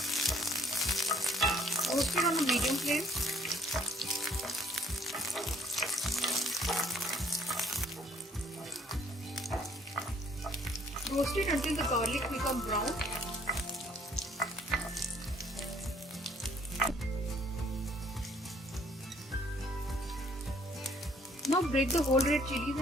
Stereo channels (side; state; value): both; normal; correlation 0.61